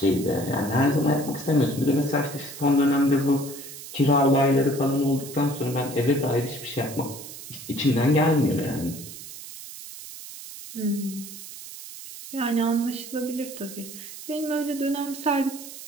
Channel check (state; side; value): noise; right; hiss, 13 dB below the sound